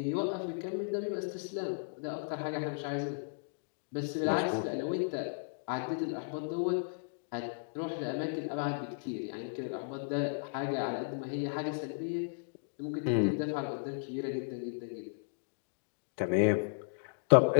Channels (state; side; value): silent; right; digital silence